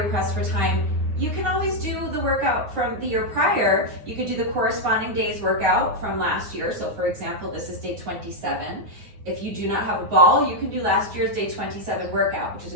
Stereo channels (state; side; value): late; left; 9.7 ms